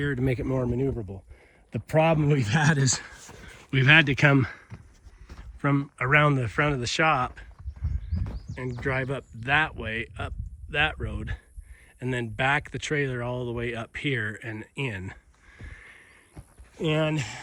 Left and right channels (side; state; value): both; identical; correlation 1.00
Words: to make it more maneuverable. The problem we've had is we've had to come from around the front of the shop and drive up that way, up that road, and then back the trailer all the way up here and in. And